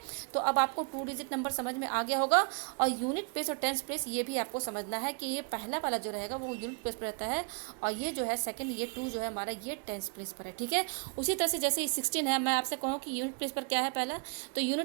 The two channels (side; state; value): left; quieter; 38.8 dB